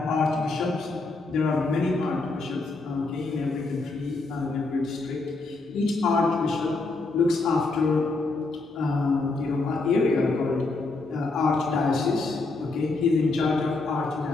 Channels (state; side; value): quieter; right; 3.5 dB